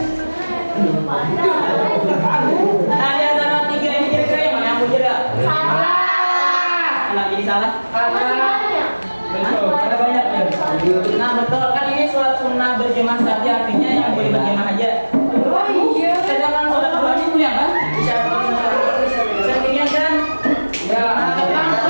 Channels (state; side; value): inverted; both; correlation -1.00